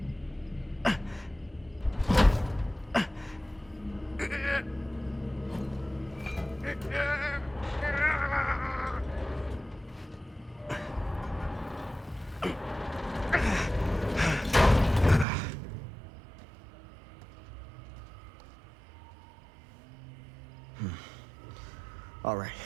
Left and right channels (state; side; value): drops out; left; at 15.2 s